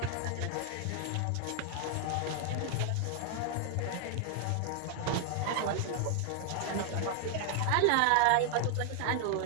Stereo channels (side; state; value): both; different; correlation 0.00